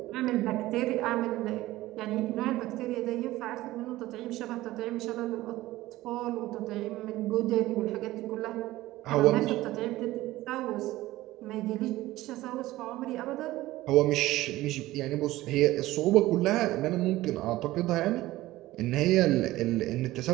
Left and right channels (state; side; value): quieter; left; 16.9 dB